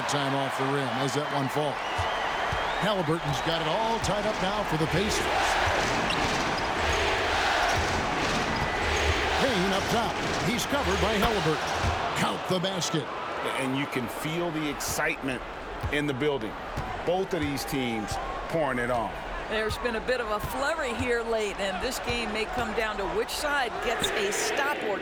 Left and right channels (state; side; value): identical; both; correlation 1.00